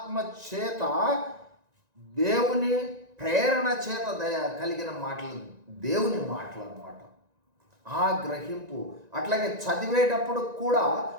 చేత దేవుని ప్రేరణ చేత కలిగిన మాటలు, దేవుని మాటలు అన్నమాట. ఆ గ్రహింపు అట్లాగే చదివేటప్పుడు కూడా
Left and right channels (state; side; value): late; left; 1.9 ms